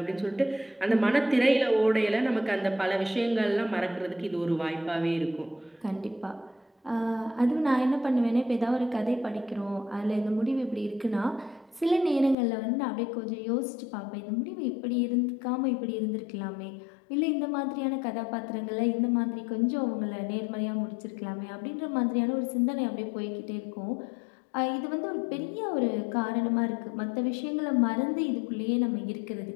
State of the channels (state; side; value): drops out; right; at 12.4 s